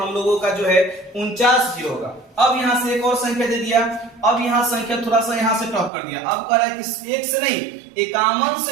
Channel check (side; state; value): left; drops out; at 5.9 s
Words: लोगों का जो है 49 जीरो होगा। अब यहाँ से एक और संख्या दे दिया। अब यहाँ संख्या थोड़ा सा यहाँ से टॉप कर दिया। अब कह रहा है कि 1 से नहीं 51